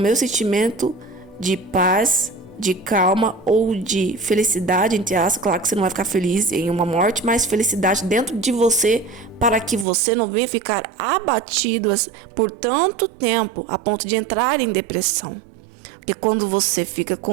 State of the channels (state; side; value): drops out; left; at 9.9 s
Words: sentimento de paz, de calma ou de felicidade, entre aspas. Claro que você não vai ficar feliz em uma morte, mas felicidade dentro de você, para que você não venha ficar abatido por tanto tempo a ponto de entrar em depressão. Porque quando você fica